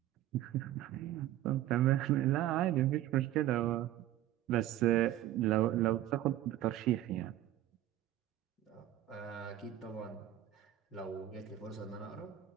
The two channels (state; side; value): quieter; left; 13.4 dB